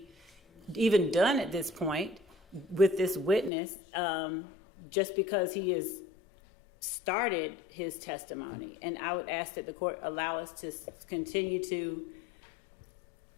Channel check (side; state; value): right; drops out; at 3.5 s